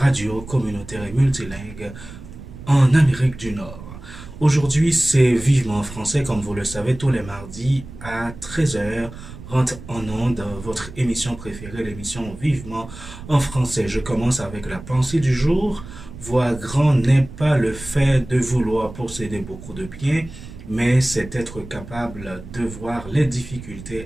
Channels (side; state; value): right; noise; rumble, 15 dB below the sound